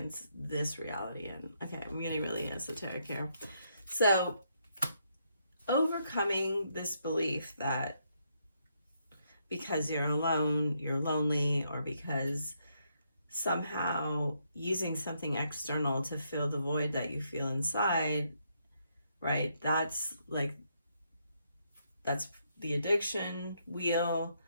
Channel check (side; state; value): both; inverted; correlation -0.76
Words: this reality in. Okay, I'm getting really esoteric here. So, overcoming this belief that because you're alone, you're lonely, or because somehow using something external to fill the void that you feel inside, right? That's the addiction wheel.